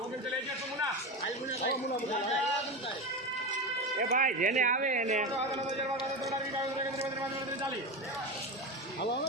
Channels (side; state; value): both; normal; correlation 0.20